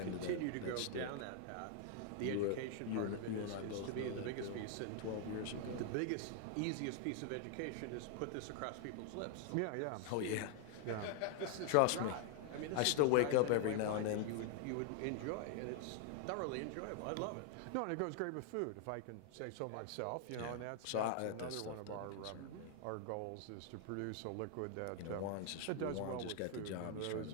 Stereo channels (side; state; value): both; different; correlation 0.00